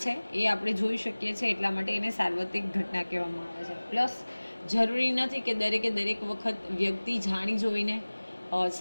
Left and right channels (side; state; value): both; inverted; correlation -1.00